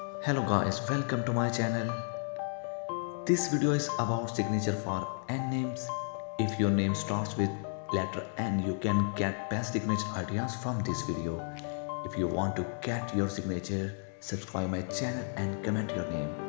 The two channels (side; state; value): right; silent; 56 dB below the other